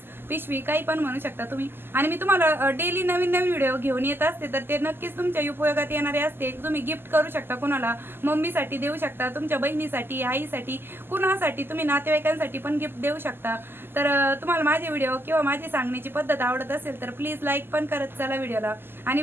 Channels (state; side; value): late; left; 0.10 ms